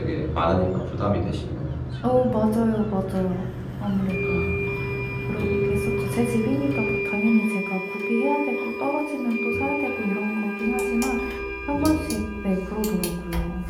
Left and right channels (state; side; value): identical; both; correlation 1.00